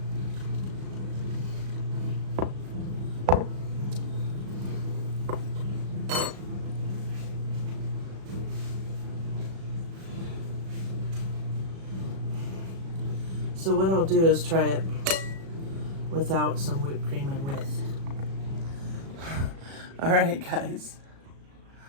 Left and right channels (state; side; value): late; left; 36 ms